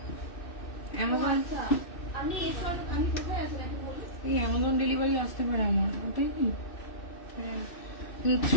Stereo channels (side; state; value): right; late; 2.6 ms